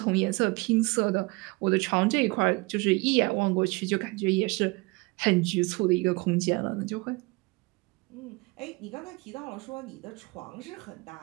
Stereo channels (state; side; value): quieter; left; 25.6 dB